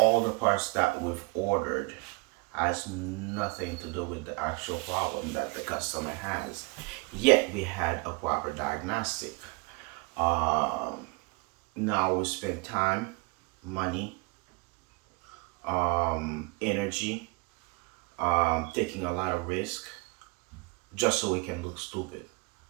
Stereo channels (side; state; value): left; quieter; 27.8 dB